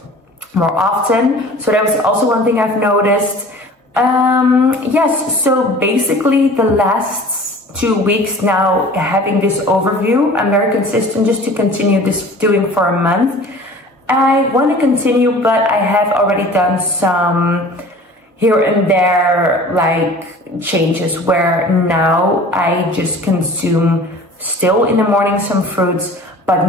more often. So that was also one thing I've noticed. Yes, so basically the last 2 weeks now, having this overview, I'm very consistent just to continue this doing for a month. I want to continue, but I have already done some here and there like changes where now I just consume still in the morning some fruits,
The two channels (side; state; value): both; normal; correlation 0.44